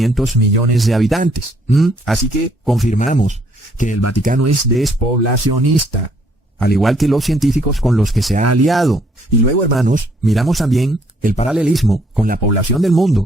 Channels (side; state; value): both; normal; correlation 0.67